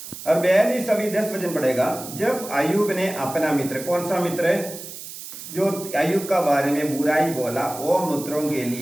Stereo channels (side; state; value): right; noise; hiss, 12 dB below the sound